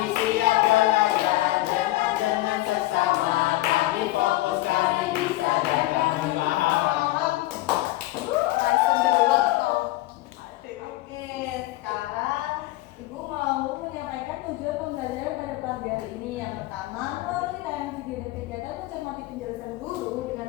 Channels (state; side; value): quieter; right; 17.7 dB